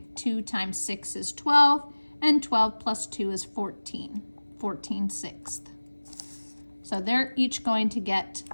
2 times 6 is 12, and 12 plus 2 is 14, 14/6. So they're each going to get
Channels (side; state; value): both; inverted; correlation -1.00